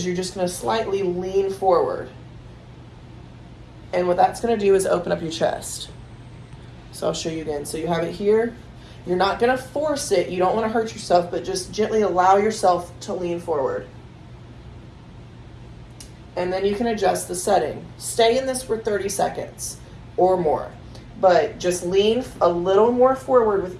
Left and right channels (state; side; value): identical; both; correlation 1.00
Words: you're just gonna slightly lean forward. And what that's going to do is open up your chest. So I'll show you again. So you have it here. You're not going to force it. You don't want to hurt yourself, but just gently allow yourself to lean forward. And then you can adjust the setting. Stay in this for 30 seconds or more, but just lean a little more forward